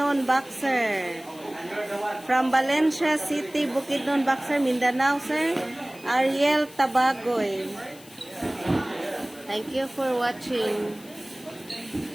Boxer. From Valencia City, Bukidnon, Boxer, Mindanao, sir. Ariel Tabagoy. Thank you for watching.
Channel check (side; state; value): left; noise; hiss, 21 dB below the sound